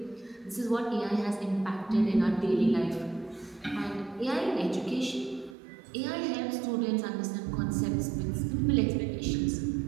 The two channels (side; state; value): left; drops out; at 5.6 s